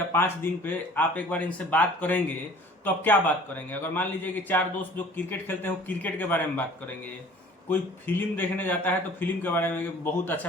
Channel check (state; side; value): normal; both; correlation 0.49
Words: 5 दिन पे आप एक बार इनसे बात करेंगे, तो आप क्या बात करेंगे? अगर मान लीजिए कि 4 दोस्त जो क्रिकेट खेलते हैं वो क्रिकेट के बारे में बात करेंगे, कोई फिल्म देखने जाता है तो फिल्म के बारे में, बहुत